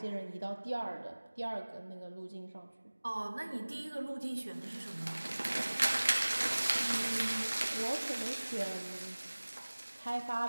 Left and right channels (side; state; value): both; inverted; correlation -1.00